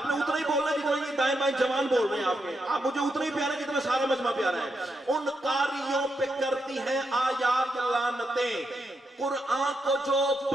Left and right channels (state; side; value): normal; both; correlation 0.83